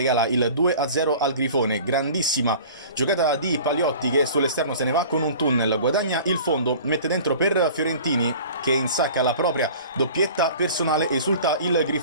il 2-0 al Grifone, grandissima giocata di Paliotti che sull'esterno se ne va con un tunnel, guadagna il fondo, mette dentro per Fiorentini che insacca la propria doppietta personale, esulta il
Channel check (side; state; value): both; inverted; correlation -0.43